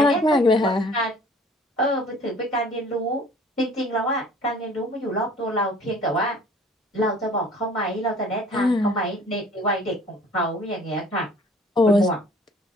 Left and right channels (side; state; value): both; normal; correlation 0.51